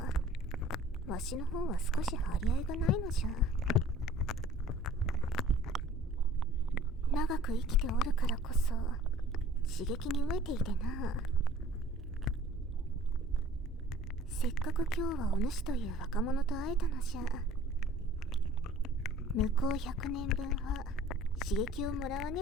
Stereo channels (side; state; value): both; normal; correlation 0.50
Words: わしの方は少し張り合いがないのじゃ。長く生きておるからこそ刺激に飢えていてな。せっかく今日はお主という若者と会えたのじゃ。向こう100年分は刺激をもらわ